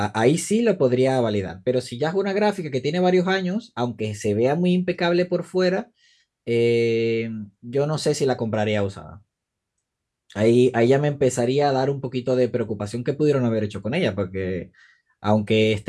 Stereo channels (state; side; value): identical; both; correlation 1.00